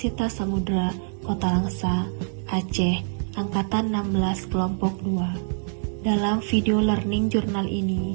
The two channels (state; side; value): silent; left; 61 dB below the other